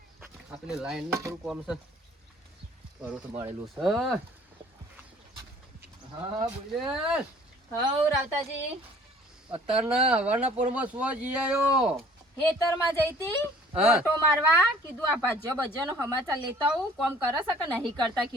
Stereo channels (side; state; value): both; normal; correlation 0.53